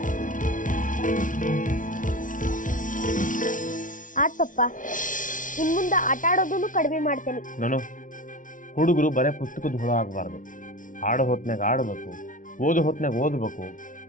ಆತ್ ಪಪ್ಪ, ಇನ್ ಮುಂದ ಆಟ ಆಡೋದನ್ನು ಕಡಿಮೆ ಮಾಡ್ತೇನೆ. ನಾನು ಹುಡುಗರು ಬರೇ ಪುಸ್ತಕದ ಹುಳ ಆಗಬಾರ್ದು. ಆಡೋ ಹೊತ್ನಾಗ ಆಡಬೇಕು, ಓದೋ ಹೊತ್ನಾಗ ಓದಬೇಕು.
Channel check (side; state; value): right; late; 0.38 ms